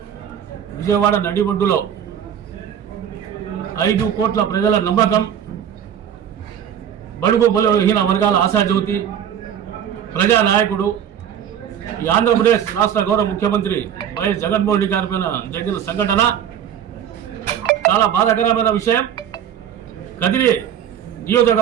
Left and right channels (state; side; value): quieter; left; 9.2 dB